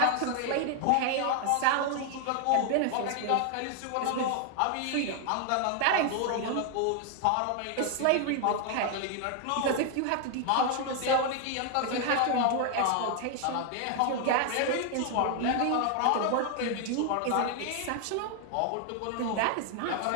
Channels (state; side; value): different; both; correlation 0.00